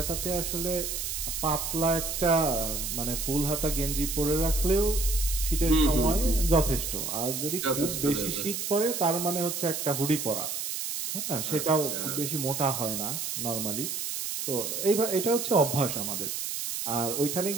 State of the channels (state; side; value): noise; right; hiss, 3 dB below the sound